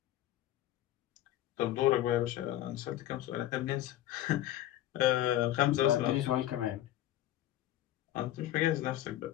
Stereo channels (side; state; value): right; quieter; 13.6 dB